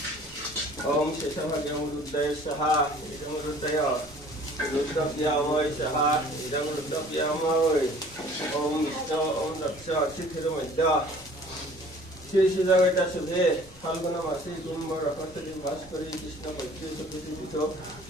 Om Sesavage Amruddaya Saha Idamruddaya Ruddapyamay Saha Idamruddapyamay Om Vishnu Om Daksha Chithiramadya Shri Siddhagata Subhe Phalguna Masi Kumbha Rakatari Bhaskari Krishna Bhakti Sabhiti Vito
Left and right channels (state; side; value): normal; both; correlation 0.50